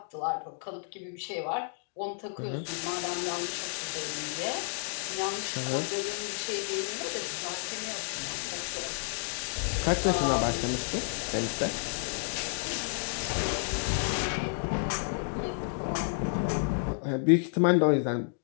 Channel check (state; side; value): silent; right; digital silence